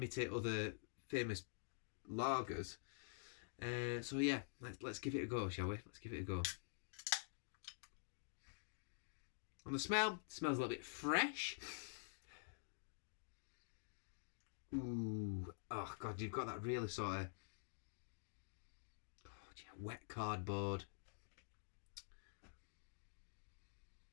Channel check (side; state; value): right; silent; digital silence